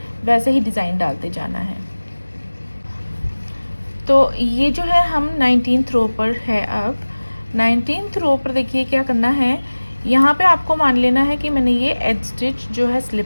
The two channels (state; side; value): inverted; both; correlation -1.00